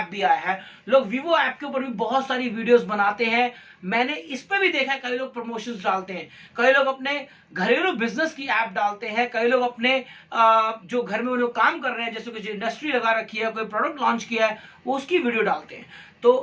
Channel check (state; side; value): identical; both; correlation 1.00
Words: भी आया है। लोग वीवो ऐप के ऊपर भी बहुत सारी वीडियोस बनाते हैं, मैंने इस पे भी देखा है, कई लोग प्रमोशंस डालते हैं, कई लोग अपने घरेलू बिजनेस की ऐप डालते हैं, कई लोग अपने जो घर में वो लोग काम कर रहे हैं, जैसे कुछ इंडस्ट्री लगा रखी है, कोई प्रोडक्ट लॉन्च किया है, वो उसकी वीडियो डालते हैं।